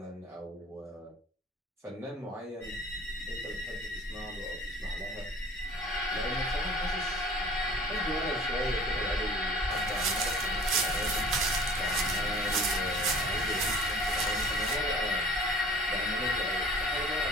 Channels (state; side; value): normal; both; correlation 0.47